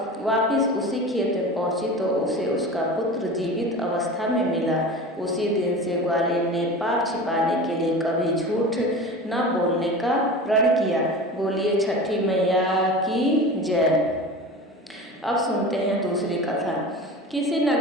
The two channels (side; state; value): both; normal; correlation 0.33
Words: वापिस उसी खेत में पहुंची तो उसे उसका पुत्र जीवित अवस्था में मिला। उसी दिन से ग्वालिन ने पाप छिपाने के लिए कभी झूठ न बोलने का प्रण किया। बोलिए छठी मैया की जय। अब सुनते हैं दूसरी कथा। किसी